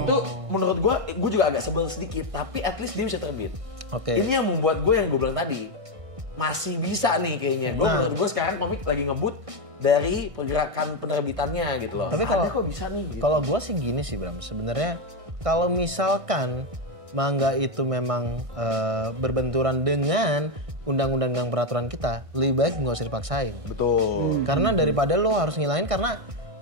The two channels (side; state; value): left; late; 1.6 ms